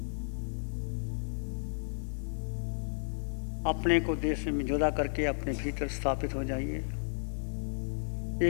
अपने को देह से जुदा करके अपने भीतर स्थापित हो जाइए।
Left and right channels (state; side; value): silent; right; 56 dB below the other